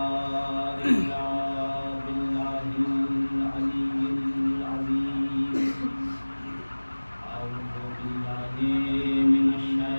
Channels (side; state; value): both; inverted; correlation -1.00